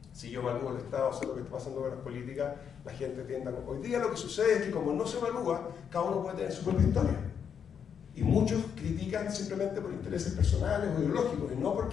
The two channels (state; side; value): quieter; right; 7.5 dB